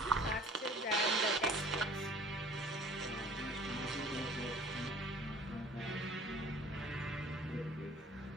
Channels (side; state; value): both; normal; correlation 0.49